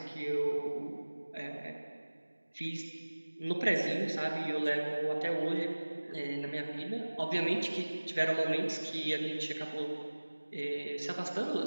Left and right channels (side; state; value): both; inverted; correlation -1.00